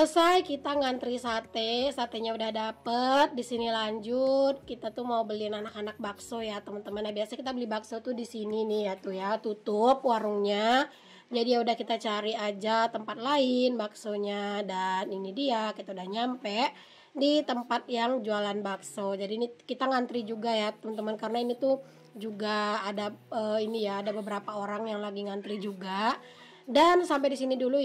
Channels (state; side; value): identical; both; correlation 1.00